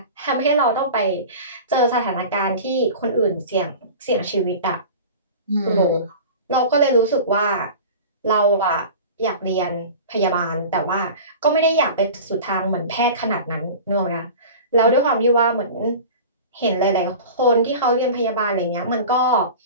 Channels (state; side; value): inverted; both; correlation -0.36